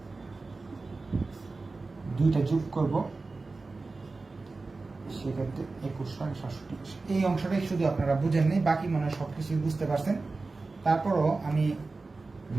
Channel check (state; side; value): quieter; left; 3.7 dB